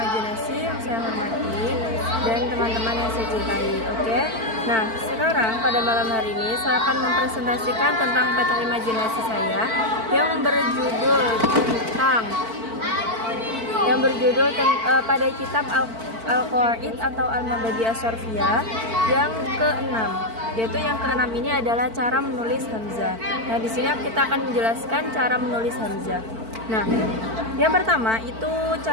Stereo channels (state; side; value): late; left; 4.5 ms